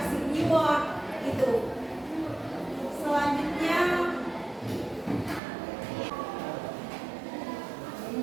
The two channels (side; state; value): left; drops out; at 5.4 s